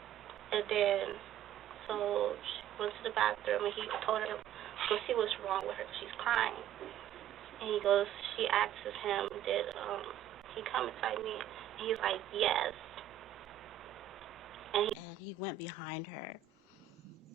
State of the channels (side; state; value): left; quieter; 10.8 dB